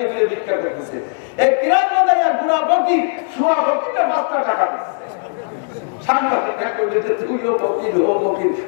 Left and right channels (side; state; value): right; silent; digital silence